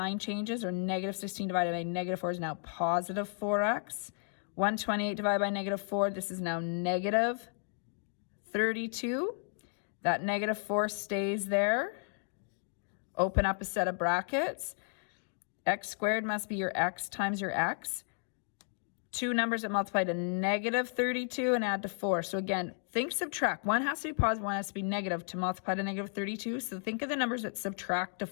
changes, or negative 16 divided by negative 4 is now positive 4x. 128 divided by negative 4, this is now negative 32. That negative 4 stays there. Open up a set of brackets. X squared must be your x times your x. Two numbers that multiply to negative 32 and add to 4. So again, think subtract. One has to be positive, one has to be negative to multiply to negative 32. So think of the numbers that subtract to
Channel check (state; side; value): silent; right; 55 dB below the other